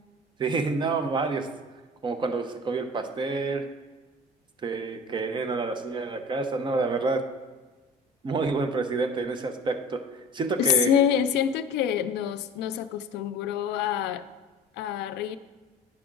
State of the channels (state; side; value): normal; both; correlation 0.40